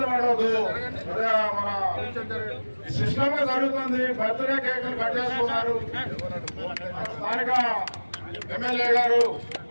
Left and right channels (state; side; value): inverted; both; correlation -1.00